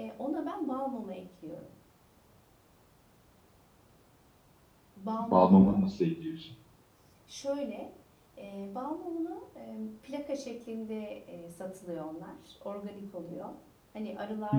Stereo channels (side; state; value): both; identical; correlation 1.00